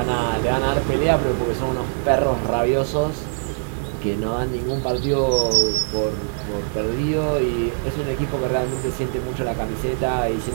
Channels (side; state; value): left; silent; digital silence